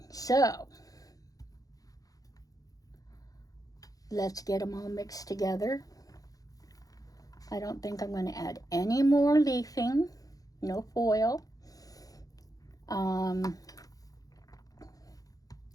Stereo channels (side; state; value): right; late; 0.17 ms